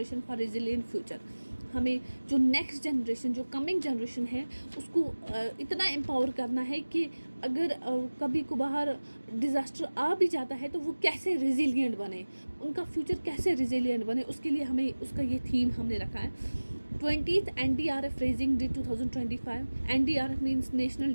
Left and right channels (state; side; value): inverted; both; correlation -1.00